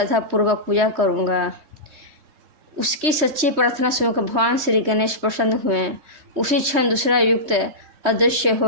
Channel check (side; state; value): left; late; 3.2 ms